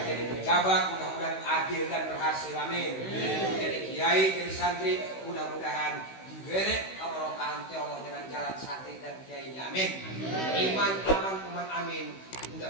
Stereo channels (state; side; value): late; right; 16 ms